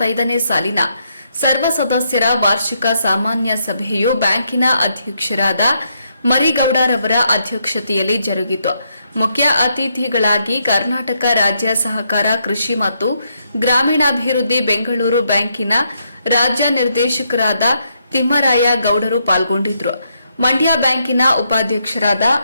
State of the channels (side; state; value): both; inverted; correlation -0.77